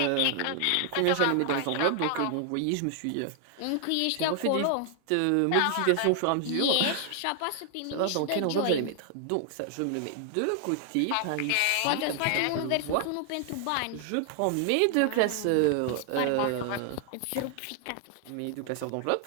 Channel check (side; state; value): both; different; correlation 0.00